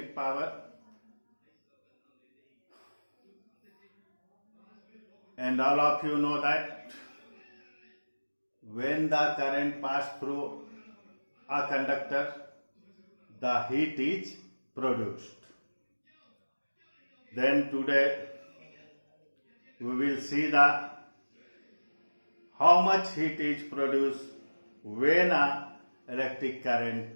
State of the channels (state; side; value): inverted; both; correlation -1.00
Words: power, and all of you know that when the current passes through a conductor, the heat is produced. Then today we will see how much heat is produced when a electric